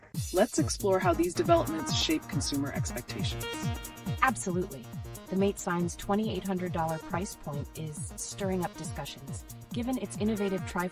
Let's explore how these developments shape consumer expectations. Absolutely. The Mate 9's $2,800 price point is stirring up discussions. Given its innovative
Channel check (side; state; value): both; identical; correlation 1.00